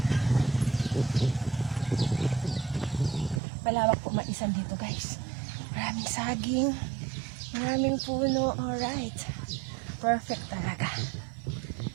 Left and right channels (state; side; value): drops out; left; at 3.4 s